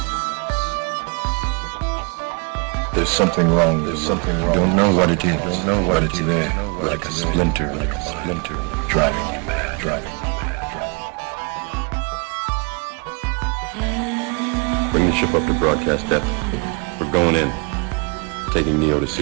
There's something wrong. There's something wrong. You don't know what it is. You don't know what it's there. Like a splinter, driving you mad. Bring the ship up to broadcast depth. We're going in. Taking Neo to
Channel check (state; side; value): quieter; left; 33.4 dB